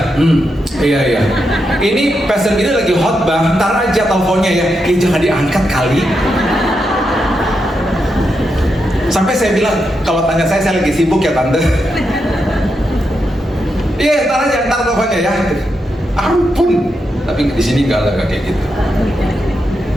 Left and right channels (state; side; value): normal; both; correlation 0.84